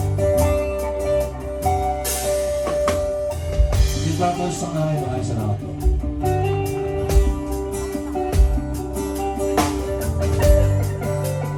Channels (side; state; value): both; identical; correlation 1.00